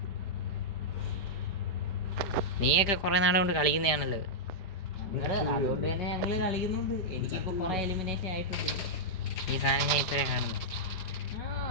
നീയൊക്കെ കുറെ നാളെ കൊണ്ട് കളിക്കുന്നതാണല്ലോ. അതുകൊണ്ട് തന്നെ ഞങ്ങള് കളിക്കുന്നുണ്ട്. എനിക്കിപ്പോ കുറെ എലിമിനേഷൻ ആയിട്ടുണ്ട്. ഈ സാധനം ഞാൻ ഇപ്പഴേ കാണുന്നത്.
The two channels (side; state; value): right; late; 4.9 ms